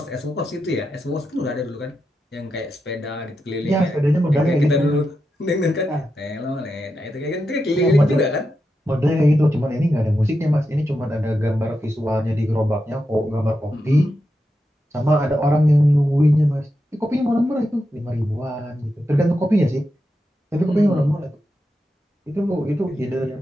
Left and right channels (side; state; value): both; normal; correlation 0.87